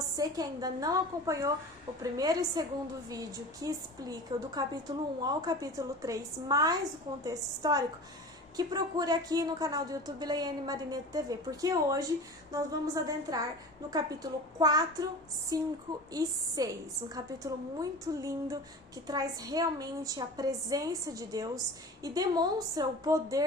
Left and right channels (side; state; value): both; normal; correlation 0.35